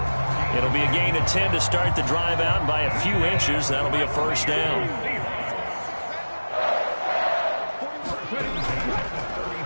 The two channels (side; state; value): both; inverted; correlation -1.00